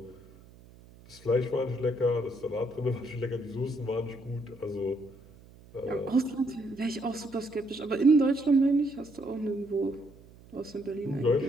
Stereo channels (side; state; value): right; noise; hum, 23 dB below the sound